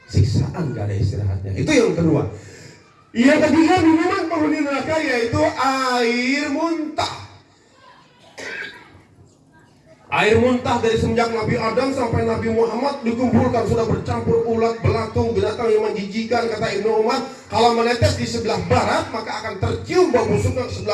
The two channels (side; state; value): both; identical; correlation 1.00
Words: Siksaan enggak ada istirahatnya. Itu yang kedua. Yang ketiga, minuman penghuni neraka yaitu air muntah. Air muntah dari semenjak Nabi Adam sampai Nabi Muhammad dikumpulkan, sudah bercampur ulat, belatung, binatang yang menjijikan. Kata Ibnu Umar, kalau menetes di sebelah barat maka akan tercium bau busuknya ke